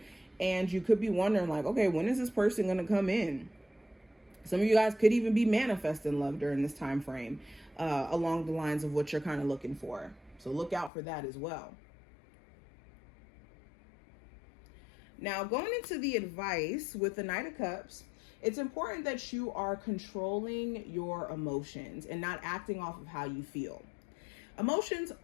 And you could be wondering like, okay, when is this person going to come in? Some of you guys could even be manifesting love during this time frame, along the lines of what you're kind of looking for. So look out for that as well. Now, going into the advice with the Knight of Cups, it's important that you are controlling your emotions and not acting off of how you feel. Emotions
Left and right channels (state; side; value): drops out; right; at 10.9 s